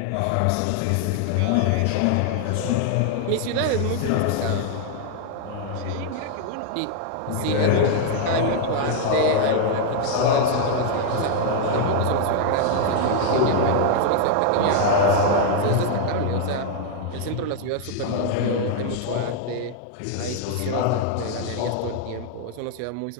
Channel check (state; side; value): different; both; correlation 0.00